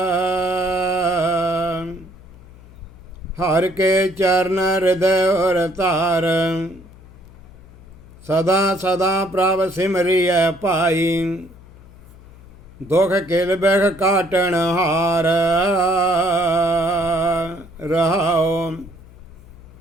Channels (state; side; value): noise; left; hum, 21 dB below the sound